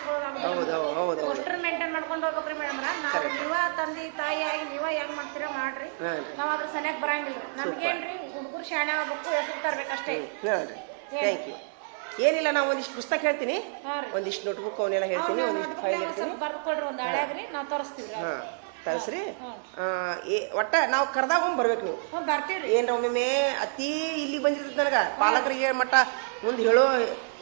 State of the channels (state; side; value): silent; left; 59 dB below the other